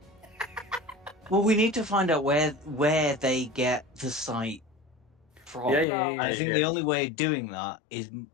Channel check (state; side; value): drops out; right; at 5.9 s